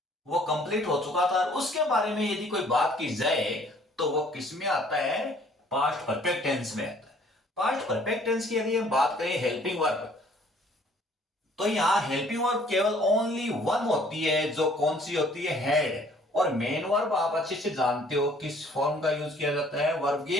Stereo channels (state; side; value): normal; both; correlation 0.58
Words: वो कंप्लीट हो चुका था, और उसके बारे में यदि कोई बात की जाए तो वो किस में आता है? पास्ट परफेक्ट टेंस में आता है। पास्ट परफेक्ट टेंस की यदि हम बात करें हेल्पिंग वर्ब, तो यहां हेल्पिंग वर्ब केवल ओनली वन होती है, जो कौन सी होती है? हेड। और मेन वर्ब आप अच्छे से जानते हो किस फॉर्म का यूज किया जाता है? वर्ब